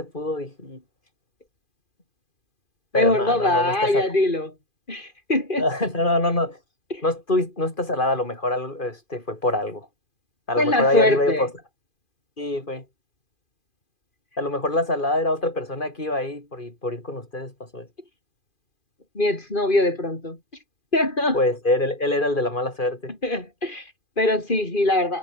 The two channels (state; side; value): late; right; 2.4 ms